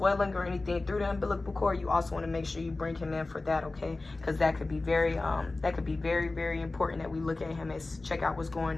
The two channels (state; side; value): quieter; right; 3.2 dB